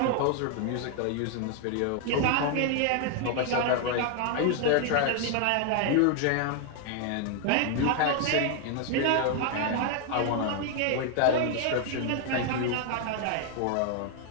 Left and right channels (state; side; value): different; both; correlation 0.00